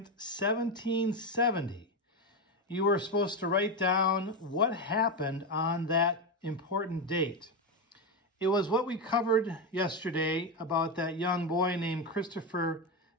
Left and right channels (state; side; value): normal; both; correlation 0.11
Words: 1770. You were supposed to write down what happened on that important date. It was what we covered yesterday about that young boy named Christopher